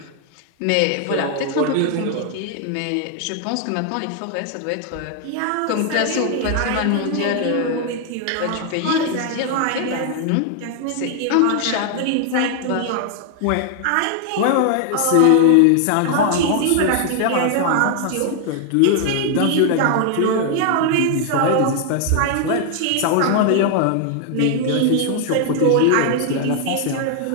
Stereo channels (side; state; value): both; different; correlation 0.00